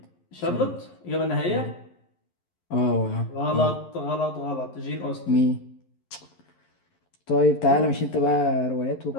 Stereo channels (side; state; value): right; late; 11 ms